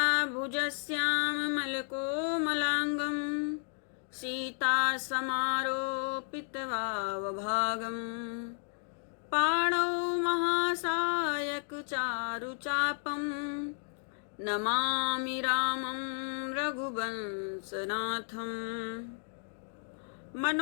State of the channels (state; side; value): silent; right; 56 dB below the other